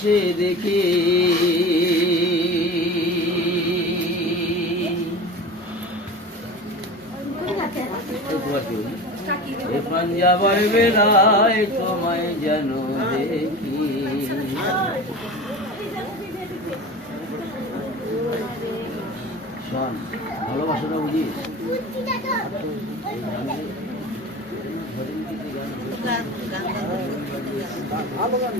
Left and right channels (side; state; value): both; normal; correlation 0.33